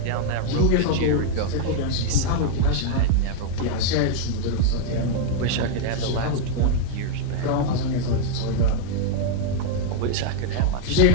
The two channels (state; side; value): different; both; correlation 0.00